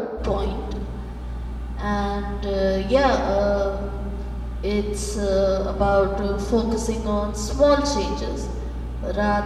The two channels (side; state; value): both; identical; correlation 1.00